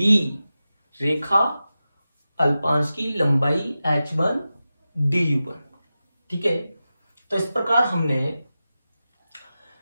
रेखा अल्पांश की लंबाई H1 du1। ठीक है, तो इस प्रकार हमने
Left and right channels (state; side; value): inverted; both; correlation -0.93